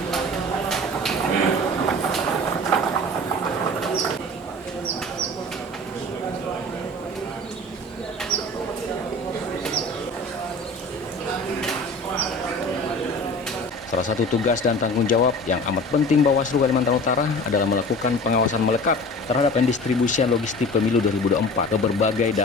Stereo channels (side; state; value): both; normal; correlation 0.39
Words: Salah satu tugas dan tanggung jawab yang amat penting Bawaslu Kalimantan Utara adalah melakukan pengawasan melekat terhadap pendistribusian logistik pemilu 2024 ke berbagai